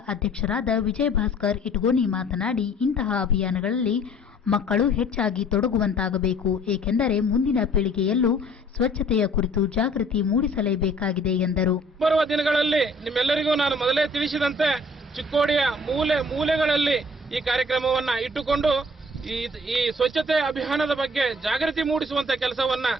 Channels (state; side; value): normal; both; correlation 0.55